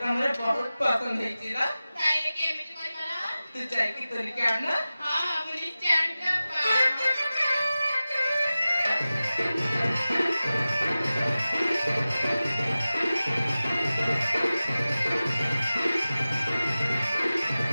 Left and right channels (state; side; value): inverted; both; correlation -0.96